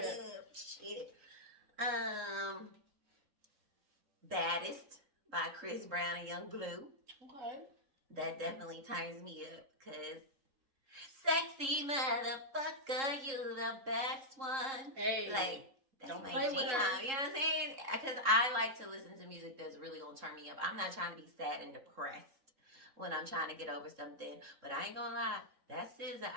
Shit. Baddest by Chris Brown and Young Blue. Okay. That definitely turns me up because sexy motherfucker, you the best one. Hey, like that's don't my play with jam. her. You know what I'm saying? Because I like to listen to music that's really gonna turn me up. I'm not trying to be sad and depressed when I'm trying to get over something. But I ain't gonna lie, that SZA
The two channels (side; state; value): left; late; 3.7 ms